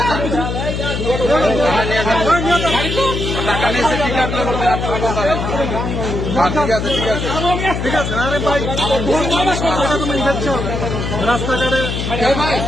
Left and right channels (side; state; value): left; noise; hum, 3 dB below the sound